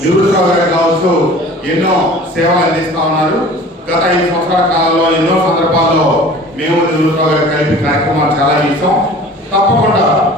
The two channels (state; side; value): normal; both; correlation 0.44